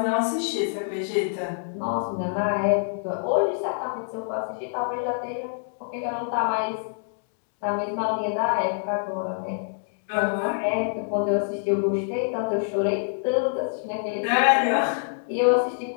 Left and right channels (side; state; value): right; silent; digital silence